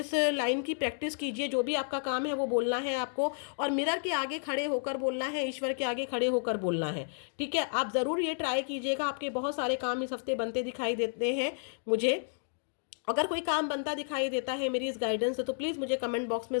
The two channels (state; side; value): silent; right; digital silence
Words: लाइन की प्रैक्टिस कीजिए। जो भी आपका काम है वो बोलना है आपको, और मिरर के आगे खड़े होकर बोलना है, ईश्वर के आगे खड़े होकर बोलना है, ठीक है। आप ज़रूर ये ट्राई कीजिएगा। आपके बहुत सारे काम इस हफ्ते बनते दिखाई देते हैं मुझे। अगर कोई काम बनता दिखाई देता है मेरी इस गाइडेंस से, तो प्लीज़ मुझे कमेंट बॉक्स में